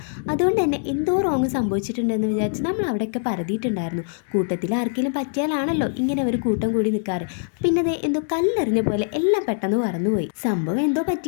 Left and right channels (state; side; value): silent; right; 63 dB below the other